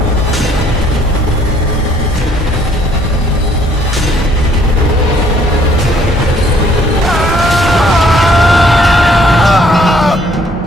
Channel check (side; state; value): both; normal; correlation 0.63